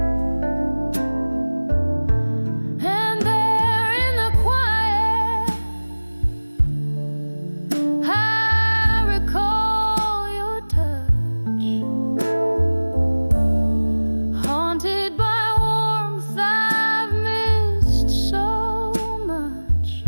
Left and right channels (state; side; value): inverted; both; correlation -1.00